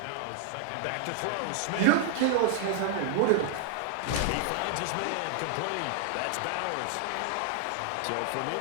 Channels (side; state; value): both; different; correlation 0.00